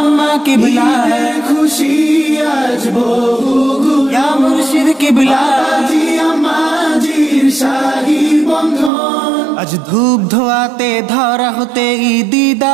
কিবলা ঈদের খুশি আজ বহুগুণ, ইয়া মুর্শিদ কিবলা বাবাজি আম্মাজির শাহী বন্ধন। আজ ধূপ ধোয়াতে ধরা হতে ঈদি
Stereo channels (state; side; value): drops out; left; at 8.9 s